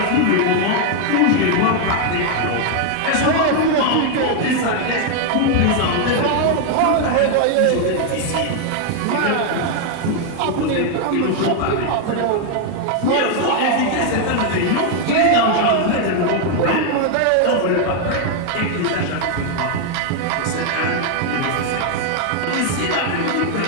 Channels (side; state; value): both; different; correlation 0.00